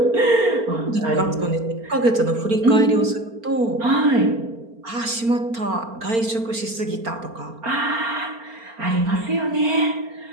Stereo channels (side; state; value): left; late; 4.4 ms